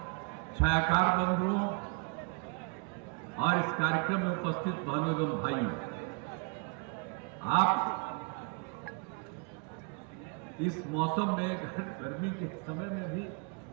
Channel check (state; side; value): quieter; left; 34.5 dB